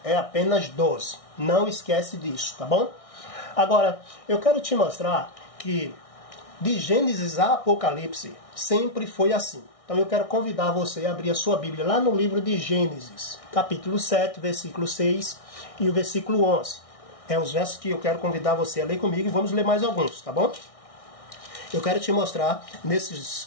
É apenas 12. Não esquece disso, tá bom? Agora, eu quero te mostrar que de Gênesis a Apocalipse sempre foi assim. Então eu quero convidar você a abrir a sua Bíblia lá no livro de Gênesis, capítulo 7, versículo 6 e o versículo 11. É os versos que eu quero convidar você a ler comigo e vamos ler mais alguns, tá bom? Eu quero te mostrar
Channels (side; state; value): right; late; 1.6 ms